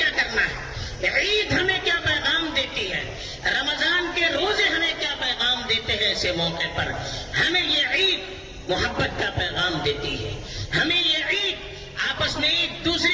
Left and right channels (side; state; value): both; identical; correlation 1.00